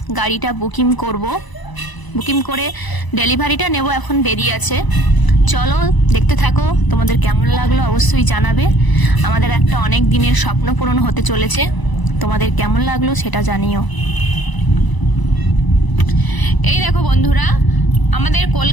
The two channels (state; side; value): late; right; 1.0 ms